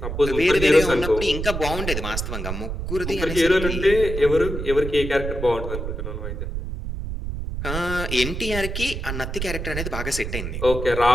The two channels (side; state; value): right; noise; rumble, 5 dB below the sound